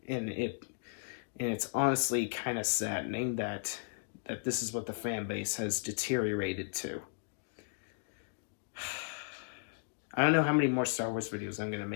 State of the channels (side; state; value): right; silent; digital silence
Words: And it's honestly kind of saddening that this is what the fan base has deteriorated to. I don't know how many more Star Wars videos I'm going to